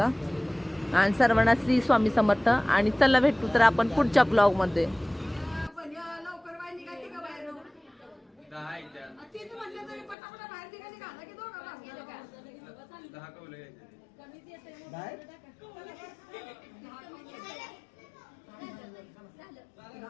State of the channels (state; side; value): drops out; right; at 10.2 s